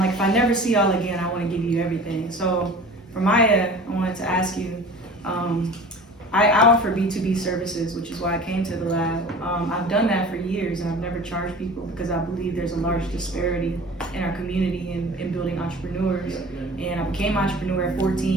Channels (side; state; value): both; normal; correlation 0.41